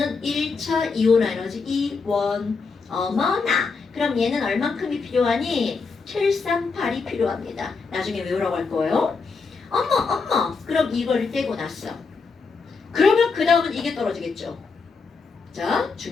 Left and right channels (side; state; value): right; quieter; 4.7 dB